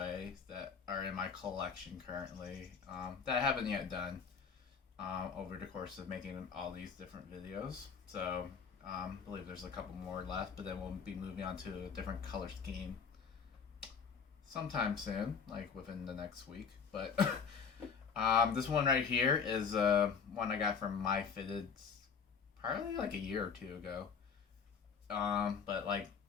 that are in my collection currently that I haven't yet done over the course of making all these different videos. So, I believe there's a couple more left, but then we'll be moving on to a different color scheme sometime soon, like within the next week. But this one right here is one I got from Myfitteds probably like a year or two ago. But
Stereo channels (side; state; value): right; quieter; 6.2 dB